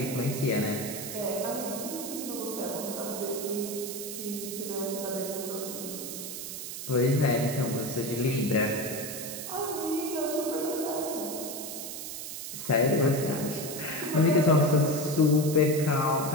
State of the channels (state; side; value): noise; right; hiss, 7 dB below the sound